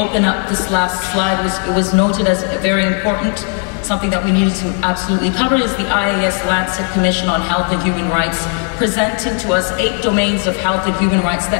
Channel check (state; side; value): quieter; right; 36.0 dB